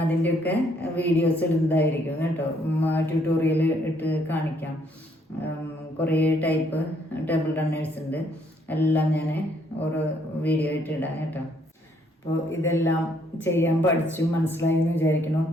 അതിൻ്റെയൊക്കെ വീഡിയോസ് ഇടുന്നതായിരിക്കും കേട്ടോ. ട്യൂട്ടോറിയൽ ഇട്ട് കാണിക്കാം. കുറേ ടൈപ്പ് ടേബിൾ റണ്ണേഴ്സ് ഉണ്ട്. എല്ലാം ഞാൻ ഓരോ വീഡിയോ ആയിട്ട് ഇടാം കേട്ടോ. അപ്പോൾ ഇതെല്ലാം ചെയ്യാൻ പഠിച്ചു മനസ്സിലായി എന്ന് വിചാരിക്കണം.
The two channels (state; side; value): normal; both; correlation 0.68